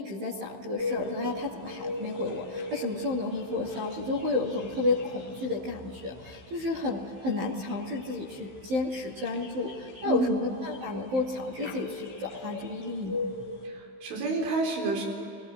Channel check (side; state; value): left; late; 16 ms